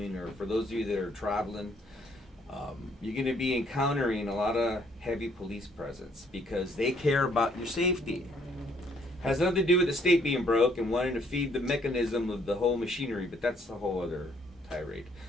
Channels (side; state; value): both; normal; correlation 0.66